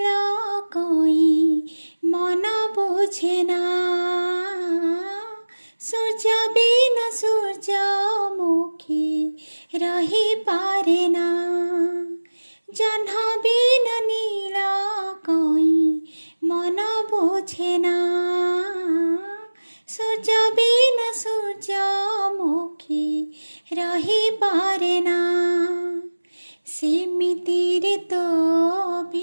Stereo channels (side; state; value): both; inverted; correlation -1.00